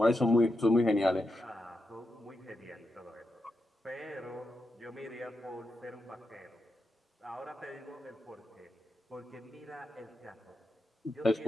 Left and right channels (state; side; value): normal; both; correlation 0.86